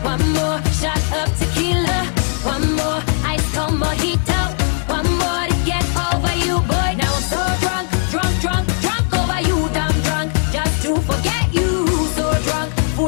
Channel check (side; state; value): right; silent; 56 dB below the other